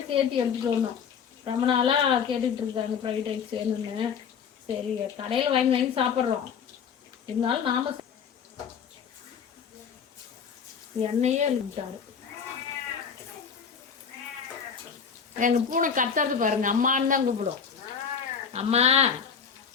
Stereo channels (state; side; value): quieter; right; 6.9 dB